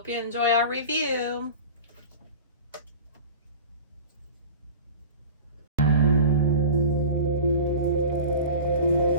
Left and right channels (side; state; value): both; inverted; correlation -0.36